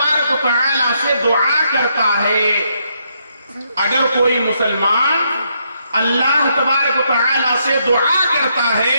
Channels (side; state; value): both; inverted; correlation -0.76